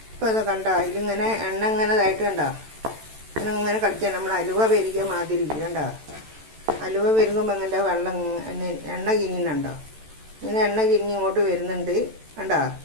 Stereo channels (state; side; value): late; left; 14 ms